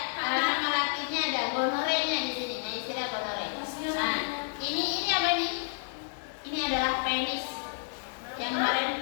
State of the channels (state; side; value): silent; right; digital silence